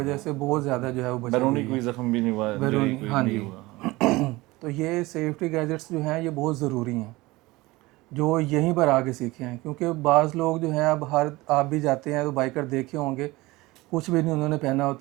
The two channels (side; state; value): left; quieter; 20.8 dB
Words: से बहुत ज़्यादा जो है वो बची बैरूनी हुई कोई है। जख्म भी नहीं हुआ, इंजरी बैरूनी, कोई हाँ नहीं जी। हुआ। तो ये सेफ्टी गैजेट्स जो हैं ये बहुत ज़रूरी हैं, जो यहीं पर आके सीखे हैं, क्योंकि बाज़ लोग जो हैं, अब हर आप भी जाते हैं तो बाइकर देखे होंगे, कुछ भी नहीं उन्होंने पहना